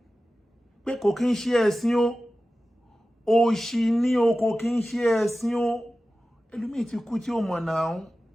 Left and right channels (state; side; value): normal; both; correlation 0.95